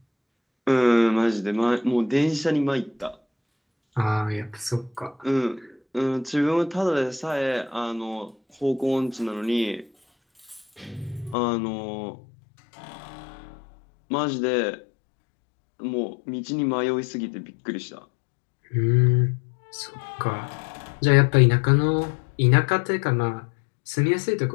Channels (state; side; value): drops out; right; at 11.4 s